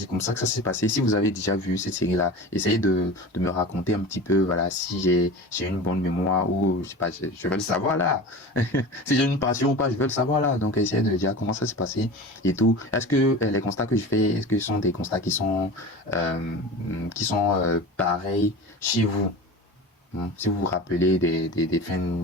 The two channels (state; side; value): normal; both; correlation 0.33